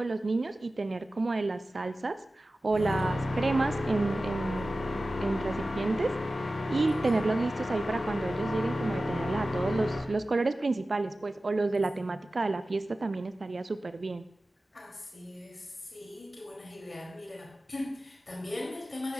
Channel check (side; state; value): both; normal; correlation 0.95